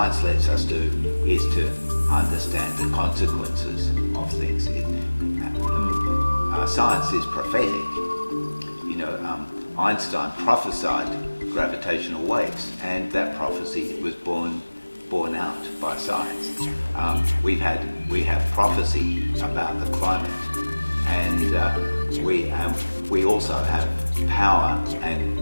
lets us do is to understand the consequences of things. Science is prophetic. Einstein prophesied gravitational waves, and that prophecy was borne out by science. We have prophecy about the climate, and we also have power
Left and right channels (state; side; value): inverted; both; correlation -1.00